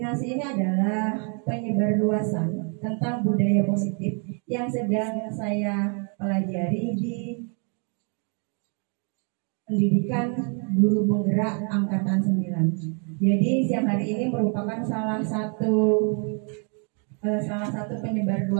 ini adalah penyebarluasan tentang budaya positif yang sedang saya pelajari di pendidikan guru penggerak angkatan 9. Jadi siang hari ini merupakan salah satu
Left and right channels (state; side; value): quieter; left; 39.2 dB